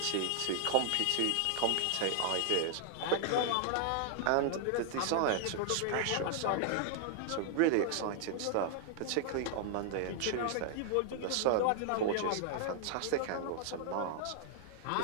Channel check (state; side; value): different; both; correlation -0.01